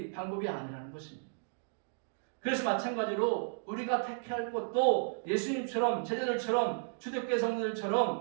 방법이 아니라는 것입니다. 그래서 마찬가지로 우리가 택할 것도 예수님처럼 제자들처럼 초대교회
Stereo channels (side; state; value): left; silent; digital silence